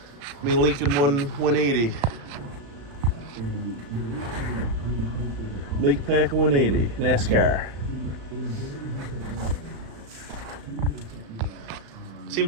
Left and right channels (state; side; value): late; left; 35 ms